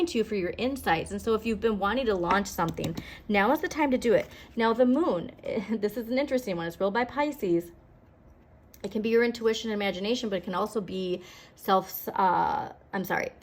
you for your insights. And so if you've been wanting to launch something, now is the time to do it. Now the moon, this is an interesting one. It's ruled by Pisces. It can be your intuition and imagination, but it can also be subconscious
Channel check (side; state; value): both; identical; correlation 1.00